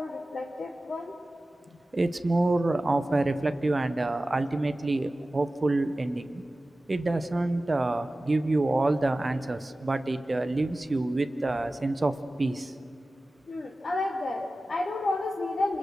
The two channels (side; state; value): both; normal; correlation 0.96